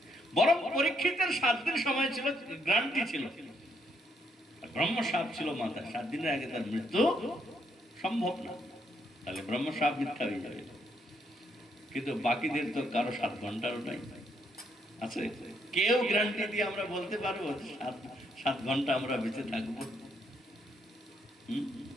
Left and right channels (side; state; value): both; normal; correlation 0.74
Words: বরং পরীক্ষিতের 7 দিন সময় ছিল, গ্রান্টি ছিল, ব্রহ্মশাপ ছিল মাথায়। 7 দিনের আগে তার মৃত্যু সম্ভব না, তাহলে ব্রহ্মশাপ মিথ্যা হয়ে যাবে। কিন্তু বাকিদের তো কারো 7 ঘন্টারও নাই আছে। কেউ গ্যারান্টি দিয়ে আমরা বলতে পারবো 7 ঘন্টা আমরা বেঁচে থাকবো?